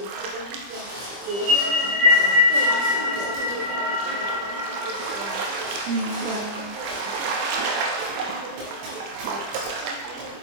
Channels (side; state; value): left; late; 25 ms